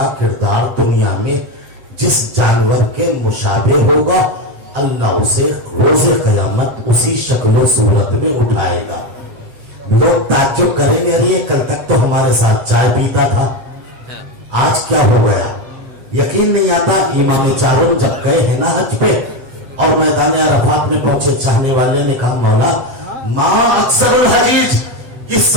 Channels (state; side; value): late; left; 8.0 ms